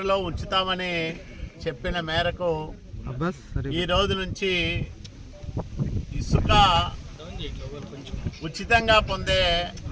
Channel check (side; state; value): both; identical; correlation 1.00